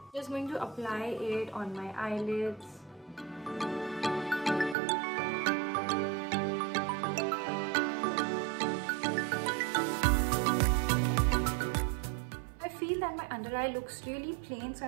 Just going to apply it on my eyelids. I feel that my under eye looks really plain, so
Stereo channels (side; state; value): left; drops out; at 4.8 s